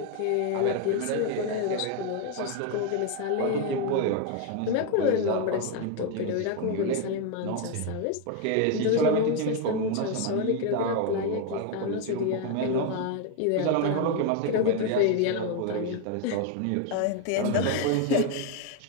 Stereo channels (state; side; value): different; both; correlation 0.01